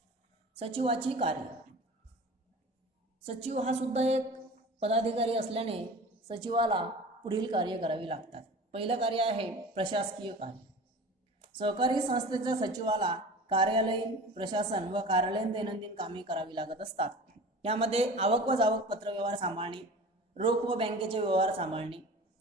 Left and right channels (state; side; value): normal; both; correlation 0.38